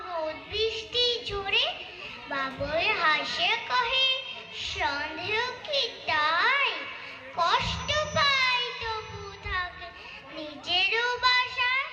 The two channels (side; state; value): both; identical; correlation 1.00